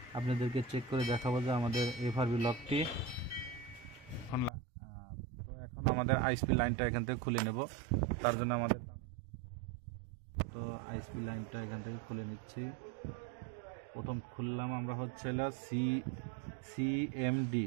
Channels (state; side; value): drops out; left; at 4.5 s